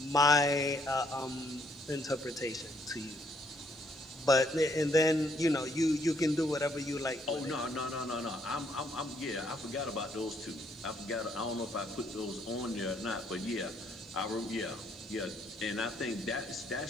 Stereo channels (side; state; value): both; normal; correlation 0.69